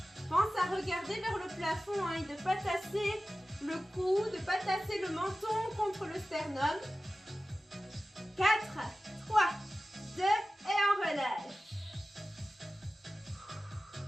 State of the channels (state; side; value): normal; both; correlation 0.95